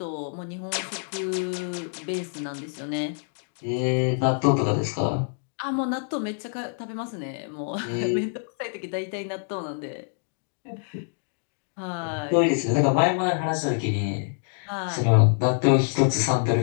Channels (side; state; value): right; silent; 61 dB below the other